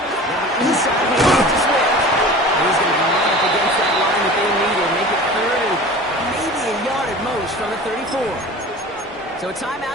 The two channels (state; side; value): normal; both; correlation 0.39